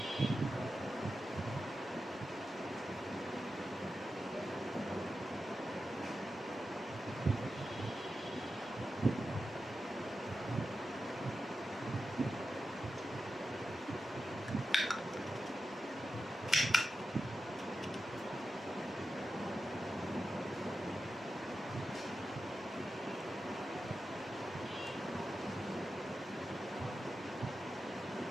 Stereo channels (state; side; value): normal; both; correlation 0.91